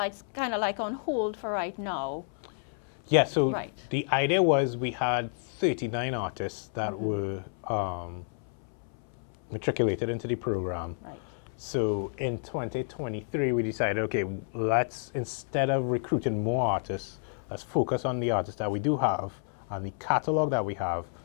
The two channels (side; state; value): right; silent; 58 dB below the other